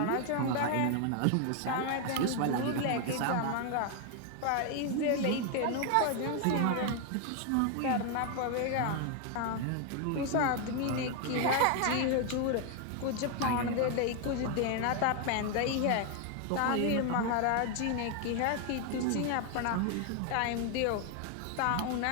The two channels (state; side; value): different; both; correlation 0.01